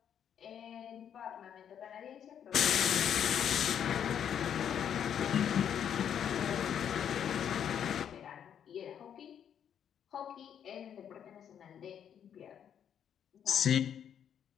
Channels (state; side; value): quieter; right; 8.9 dB